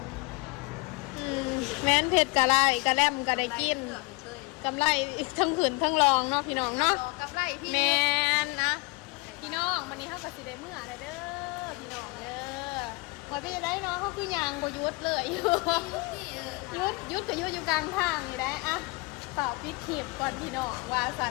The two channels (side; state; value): right; quieter; 26.4 dB